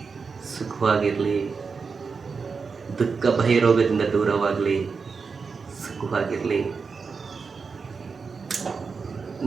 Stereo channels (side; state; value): left; quieter; 5.1 dB